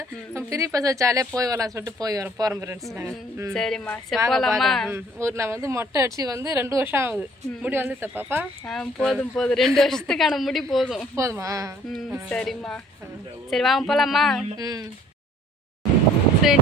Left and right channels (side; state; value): both; normal; correlation 0.58